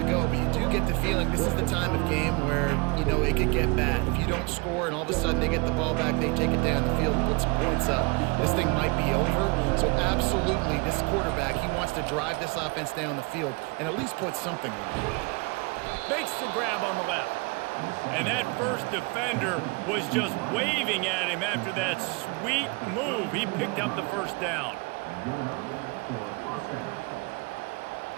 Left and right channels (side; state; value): left; quieter; 28.4 dB